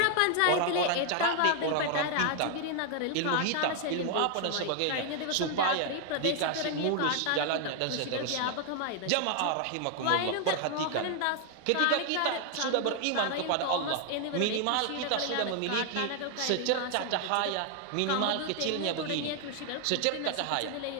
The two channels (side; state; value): both; different; correlation 0.00